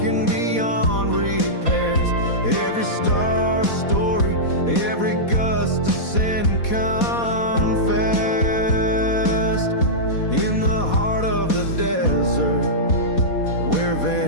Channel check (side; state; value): right; late; 4.2 ms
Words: beyond repairs. Every star story, every gust of sin confessed in the heart of the desert where